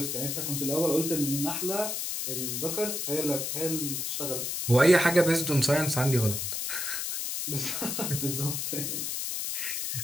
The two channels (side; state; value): left; noise; hiss, 2 dB below the sound